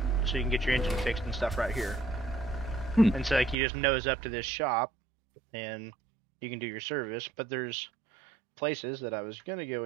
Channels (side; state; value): left; drops out; at 3.6 s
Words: so you can get your engine fixed and stuff right here. And so like you just nose up to this shop, and you can do your service. But there's places that I was gonna go